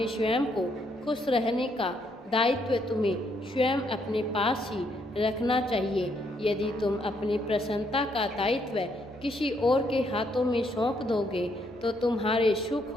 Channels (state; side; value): normal; both; correlation 0.73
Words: स्वयं को खुश रहने का दायित्व तुम्हें स्वयं अपने पास ही रखना चाहिए। यदि तुम अपनी प्रसन्नता का दायित्व किसी और के हाथों में सौंप दोगे, तो तुम्हारे